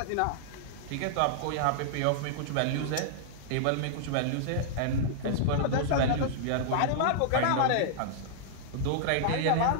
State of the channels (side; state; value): both; different; correlation -0.01